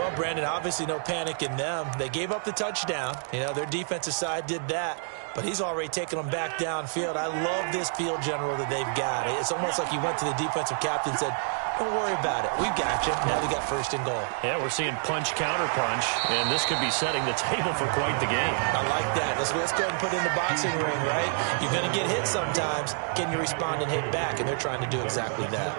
Brandon, obviously no panic in them. They gave up the touchdown. You know, their defensive side did that, but he's already taken them back downfield. I love this field general that they've got. It's almost like he went to the defensive captain and said, don't worry about it. We've got you. Now we got 1st and goal. Yeah, we're seeing punch, counter punch, and this could be setting the table for quite the game. I like that. Let's go ahead and put it in the boxing ring, right? You're going to get hit sometimes. Can you respond and hit back? And they're trying to do exactly that.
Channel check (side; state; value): left; silent; 57 dB below the other